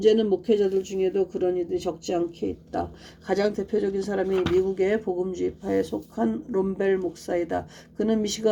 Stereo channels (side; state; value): both; identical; correlation 1.00